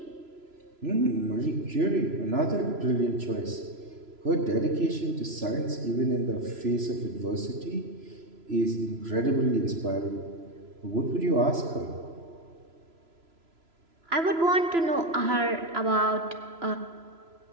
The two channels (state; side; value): late; left; 3.0 ms